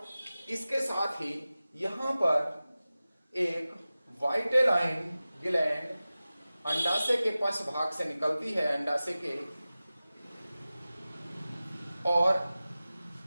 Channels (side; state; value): both; inverted; correlation -0.96